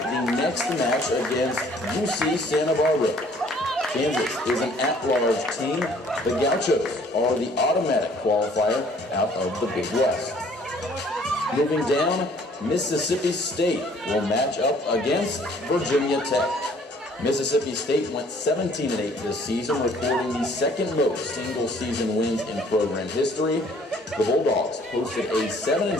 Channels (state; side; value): normal; both; correlation 0.58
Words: the next match against UC Santa Barbara. Kansas is an at-large team. The Gauchos are the automatic qualifier out of the Big West. Moving down, Mississippi State will match up against Virginia Tech. Mississippi State went 17-8 this season, recording the second most single-season wins in program history. The Bulldogs posted a